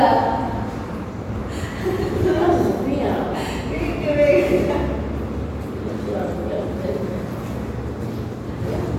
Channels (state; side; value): identical; both; correlation 1.00